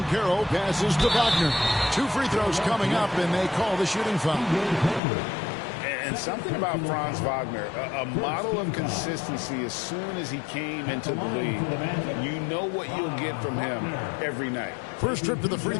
passes to Wagner. 2 free throws coming up, and they call the shooting foul. And something about Franz Wagner, a model of consistency as soon as he came into the league. You know what you'll get from him every night. First trip to the free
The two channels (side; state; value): right; drops out; at 5.0 s